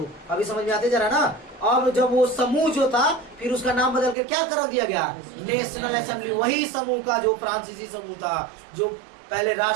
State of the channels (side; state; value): left; drops out; at 4.2 s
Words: अभी समझ में आते जरा ना। अब जब वो समूह जो था, फिर उसका नाम बदल के क्या कर दिया गया? National assembly. वही समूह का जो फ्रांसीसी समूह था, जो पहले